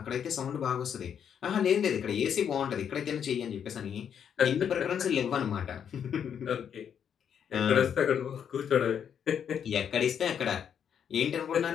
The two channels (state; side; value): quieter; right; 8.2 dB